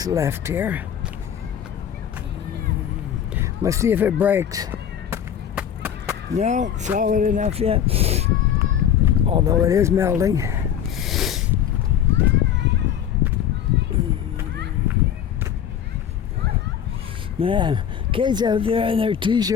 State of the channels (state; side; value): quieter; right; 9.4 dB